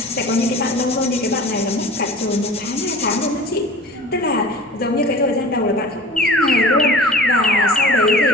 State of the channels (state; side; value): normal; both; correlation 0.40